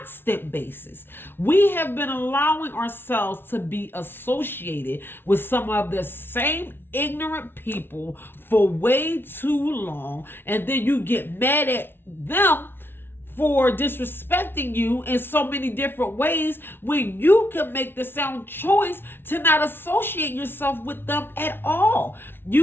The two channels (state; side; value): late; right; 0.11 ms